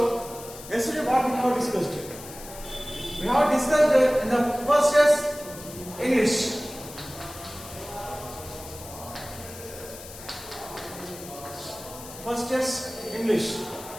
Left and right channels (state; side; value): noise; left; hiss, 14 dB below the sound